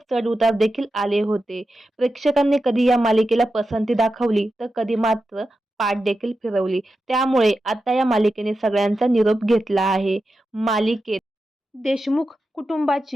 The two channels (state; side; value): normal; both; correlation 0.90